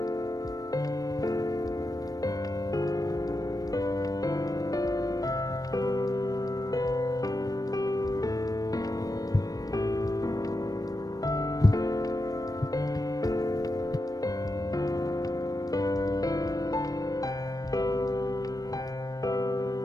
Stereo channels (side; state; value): right; late; 0.18 ms